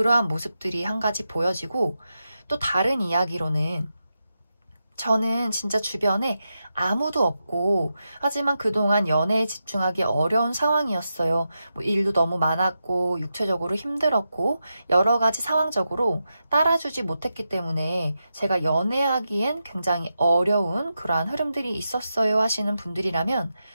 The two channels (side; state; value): both; inverted; correlation -0.88